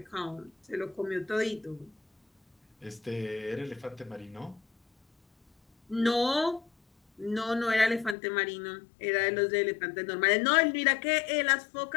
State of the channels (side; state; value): right; drops out; at 8.2 s